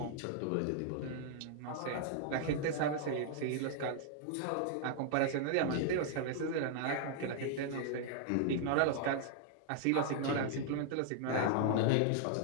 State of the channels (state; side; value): different; both; correlation -0.01